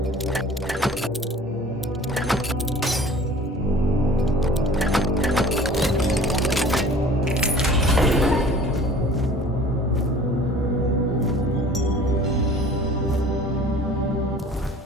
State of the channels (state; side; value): normal; both; correlation 0.46